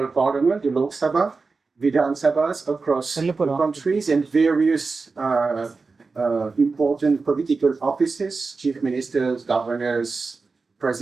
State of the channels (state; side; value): quieter; left; 4.2 dB